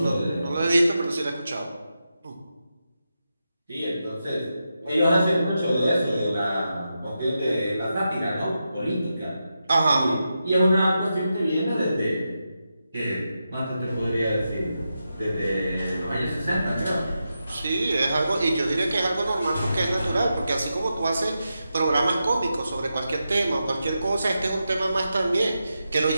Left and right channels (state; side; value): inverted; both; correlation -0.88